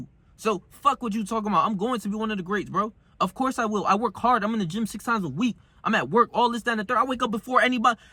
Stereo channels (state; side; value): identical; both; correlation 1.00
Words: So fuck what you talking about. I'm going to be one of the greats, bro. Of course I will. I work hard. I'm in the gym 6 times a week. I'm at work, all this, that, and the third. I wake up before anybody.